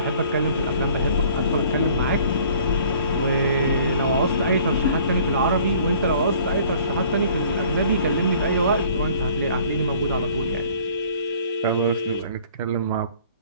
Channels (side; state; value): both; inverted; correlation -0.55